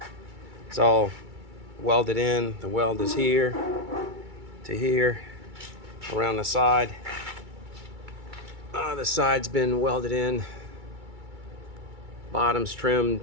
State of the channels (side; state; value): left; late; 2.3 ms